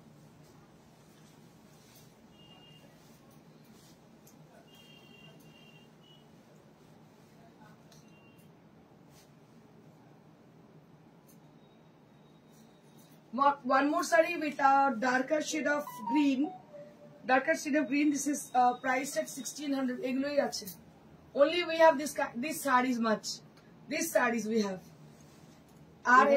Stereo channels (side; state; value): both; identical; correlation 1.00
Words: One more saree with a darker shade of green. Darker shade of green. This is priced at 1600. এগুলোই আছে। Only we have this sarees much. These sarees we have. আর